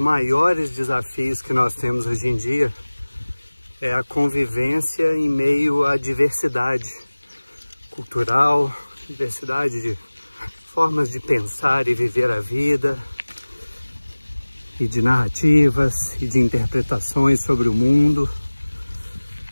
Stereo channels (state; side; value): inverted; both; correlation -1.00